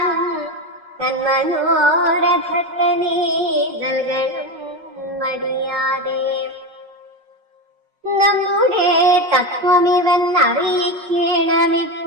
തന്മനോരഥത്തെ നീ നൽകണം മടിയാതെ. നമ്മുടെ തത്വമിവൻ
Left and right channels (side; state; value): left; late; 5.4 ms